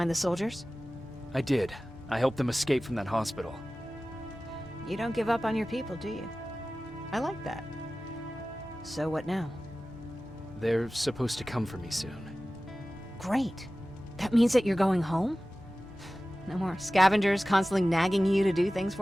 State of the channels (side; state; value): both; normal; correlation 0.96